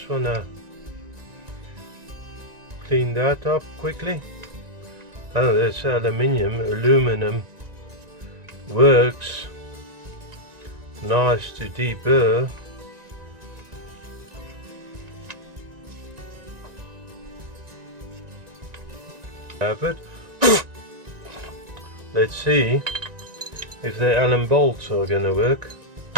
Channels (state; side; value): late; left; 1.9 ms